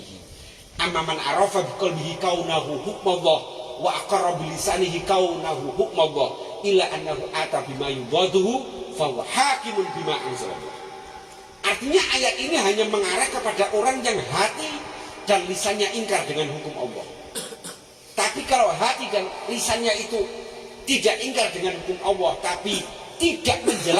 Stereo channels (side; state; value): both; identical; correlation 1.00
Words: Amma man arafa biqalbihi kaunahu hukmallah wa aqarra bi lisanihi kaunahu hukmallah illa annahu ata bima yudaduhu fa huwa hakimun bima anzalallah. Artinya ayat ini hanya mengarah kepada orang yang hati dan lisannya ingkar dengan hukum Allah. Tapi kalau hati dan lisannya itu tidak ingkar dengan hukum Allah, tapi tidak